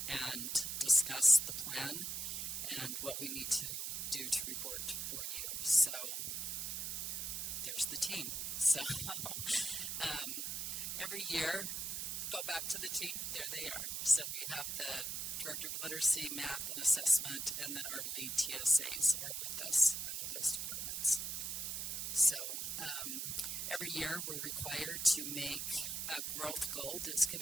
and discuss the plan and what we need to do to report for you. So there's the team. So every year, go back to the team. There they are. So we have the Director of Literacy, Math, and Assessment, and then our lead TSAs are with us under those departments. So every year we're required to make a growth goal that's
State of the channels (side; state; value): right; noise; hiss, 2 dB below the sound